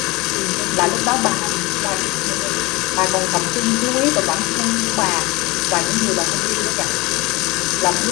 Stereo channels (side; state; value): right; quieter; 23.0 dB